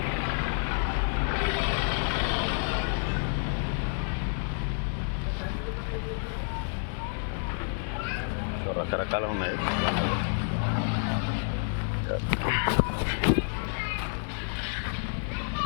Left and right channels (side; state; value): right; silent; digital silence